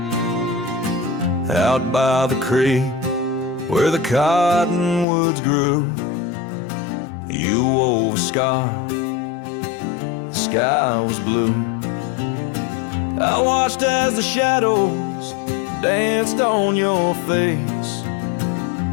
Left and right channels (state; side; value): drops out; right; at 5.1 s